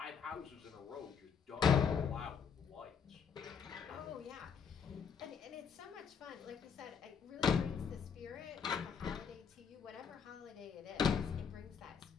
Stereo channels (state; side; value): quieter; right; 6.7 dB